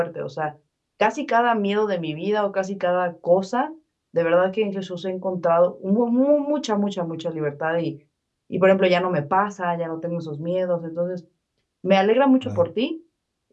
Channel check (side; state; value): both; identical; correlation 1.00